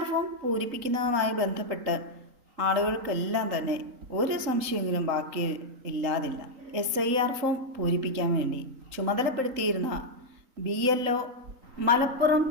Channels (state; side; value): late; left; 3.8 ms